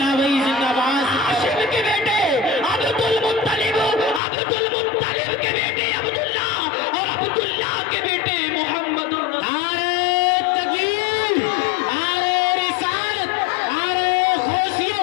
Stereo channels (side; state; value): right; drops out; at 4.2 s